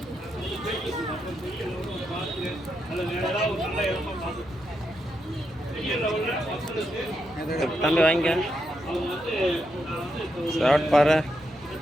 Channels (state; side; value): noise; left; hum, 25 dB below the sound